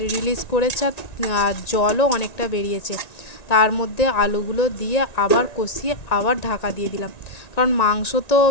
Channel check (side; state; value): right; late; 1.9 ms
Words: রিলিজ করেছে আর জলও অনেকটা বেরিয়েছে। তার মধ্যে আলুগুলো দিয়ে আবার কষিয়ে আবার ঢাকা দিয়ে দিলাম, কারণ মাংস তো